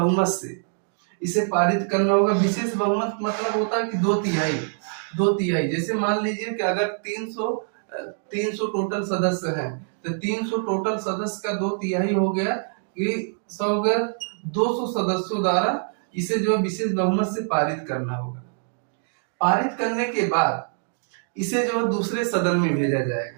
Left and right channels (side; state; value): left; silent; 62 dB below the other